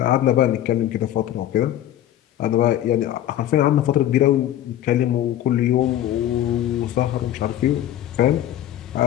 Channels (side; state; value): right; quieter; 12.2 dB